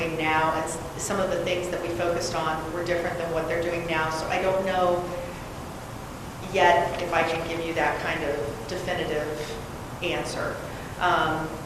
now. And some of the things that we focused on were different than what they're doing now. So I don't know yet if I can give you that kind of definitive answer.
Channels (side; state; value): both; identical; correlation 1.00